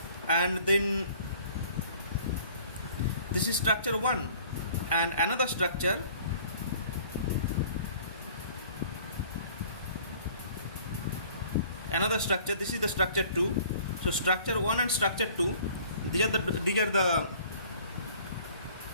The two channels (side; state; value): both; inverted; correlation -0.52